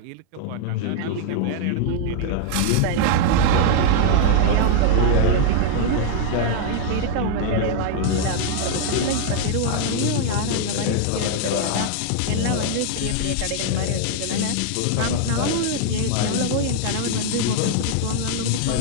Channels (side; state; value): both; different; correlation 0.00